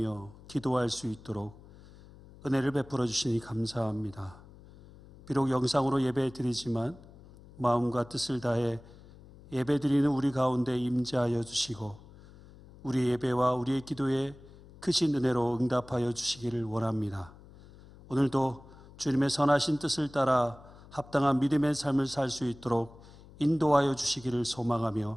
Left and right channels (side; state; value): left; noise; hum, 21 dB below the sound